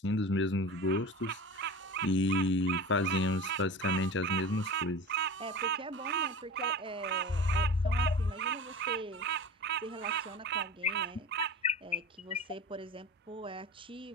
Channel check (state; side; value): normal; both; correlation 0.33